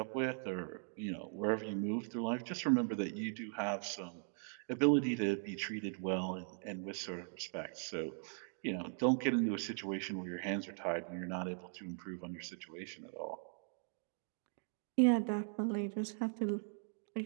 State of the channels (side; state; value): left; silent; 51 dB below the other